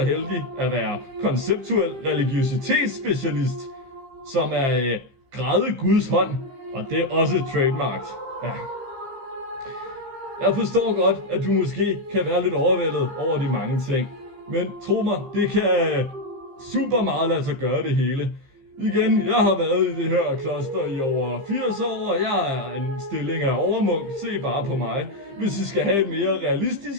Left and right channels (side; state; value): left; late; 15 ms